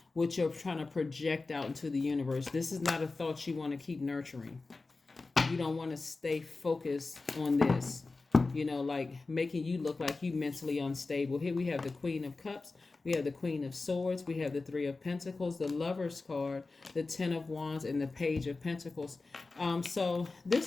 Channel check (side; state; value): right; quieter; 3.7 dB